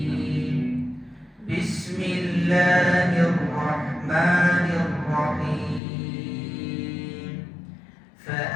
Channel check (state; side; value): drops out; right; at 5.8 s